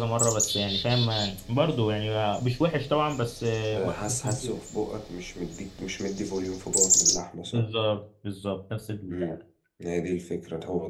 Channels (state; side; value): identical; both; correlation 1.00